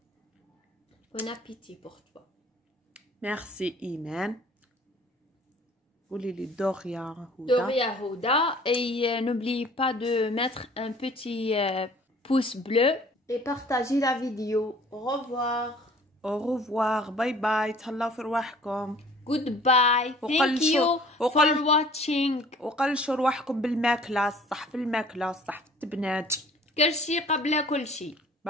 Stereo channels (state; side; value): normal; both; correlation 0.51